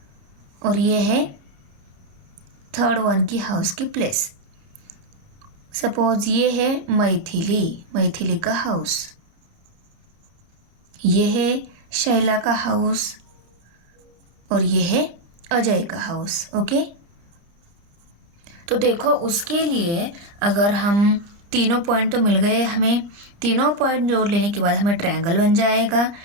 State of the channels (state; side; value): late; left; 30 ms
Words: और ये है थर्ड वन की हाउस की प्लेस। सपोज ये है मैथिली का हाउस, ये है शैला का हाउस, और ये है अजय का हाउस। ओके, तो देखो उसके लिए अगर हम तीनों पॉइंट तो मिल गए हमें, तीनों पॉइंट जोड़ लेने के बाद हमें ट्रायंगल बन जाएगा।